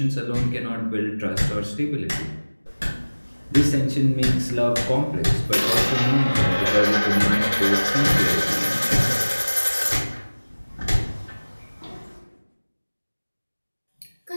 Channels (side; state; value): both; inverted; correlation -1.00